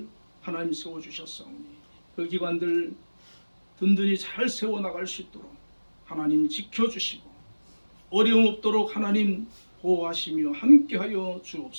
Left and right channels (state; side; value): inverted; both; correlation -1.00